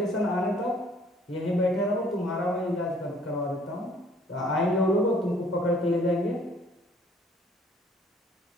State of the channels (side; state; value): both; normal; correlation 0.59